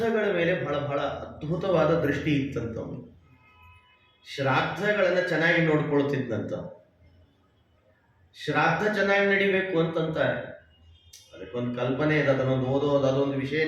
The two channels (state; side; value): identical; both; correlation 1.00